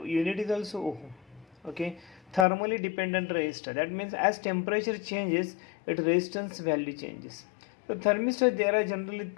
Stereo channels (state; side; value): drops out; right; at 2.5 s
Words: unit is also ohm. Okay, thermally dependent resistor, that means as temperature changes its resistance value changes. So thermistor, there are generally